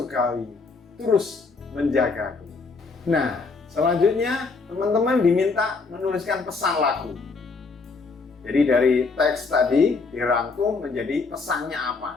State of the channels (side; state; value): right; quieter; 4.3 dB